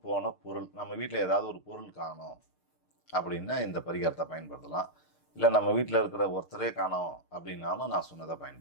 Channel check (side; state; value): right; late; 6.6 ms